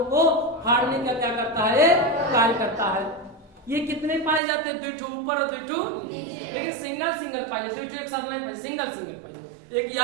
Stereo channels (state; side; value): drops out; left; at 4.4 s